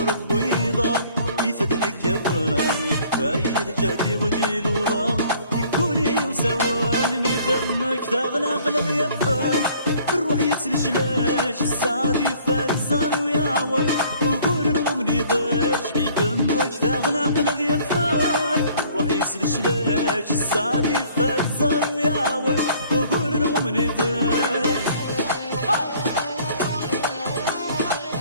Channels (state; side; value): inverted; both; correlation -0.56